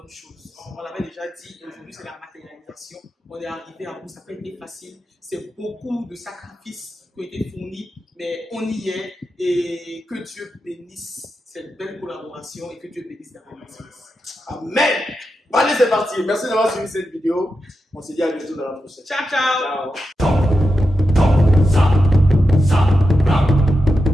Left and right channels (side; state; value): both; normal; correlation 0.89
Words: choses. On l'avait déjà dit, et aujourd'hui c'est la matérialisation. On est arrivé à bout, ça n'a pas été facile. C'est beaucoup de sacrifices qui ont été fournis, mais on y est, et que Dieu bénisse cette belle collaboration et que Dieu bénisse la relation. Amen. Bon, allez, c'est parti. Merci d'avoir suivi cette vidéo. On se dit à bientôt dans la prochaine. Ciao, ciao. Ciao.